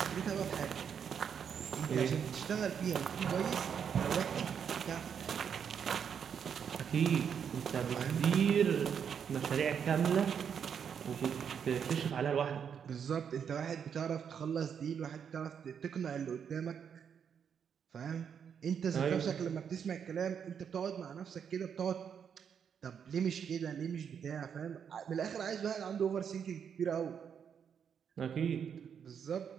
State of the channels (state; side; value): quieter; left; 7.6 dB